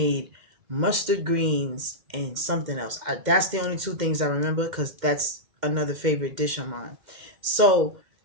mustard greens and something else. That's the only two things I remember because that's another favorite dish of mine. So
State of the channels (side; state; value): left; late; 2.1 ms